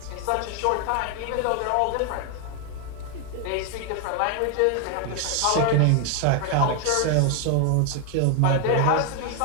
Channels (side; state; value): both; different; correlation 0.01